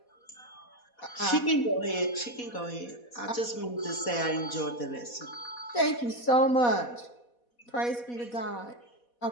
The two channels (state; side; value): late; right; 4.1 ms